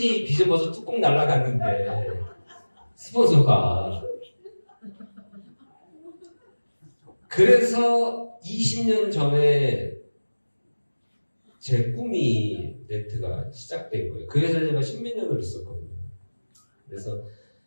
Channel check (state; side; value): inverted; both; correlation -1.00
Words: 비전 버섯 뚜껑 날라갔는데 스폰서가 그래서 20년 전에 제 꿈이 네트가 시작된 거예요. 그 회사에 제가 10몇 년을 있었거든요. 그래서